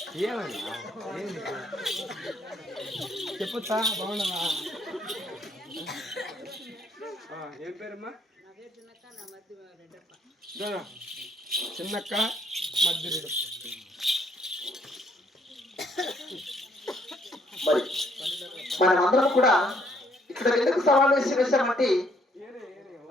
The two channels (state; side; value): normal; both; correlation 0.67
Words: ఏమన్నా ఏంది చెప్పొచ్చా బాగున్నావా ఏం పేరమ్మా చిన్నక్క మధ్యరుడు మరి మనమందరం కూడా ఇక్కడ ఎందుకు సవాల్ వేసి వేశామంటే